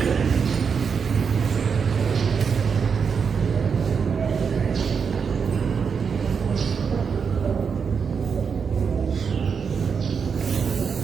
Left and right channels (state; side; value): quieter; left; 6.2 dB